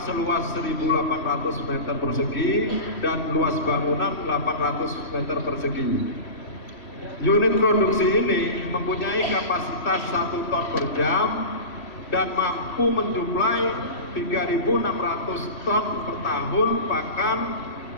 seluas 1.800 meter persegi dan luas bangunan 800 meter persegi. Unit produksi ini mempunyai kapasitas 1 ton per jam dan mampu mensuplai 3.600 ton per tahun pakan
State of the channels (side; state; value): right; late; 3.1 ms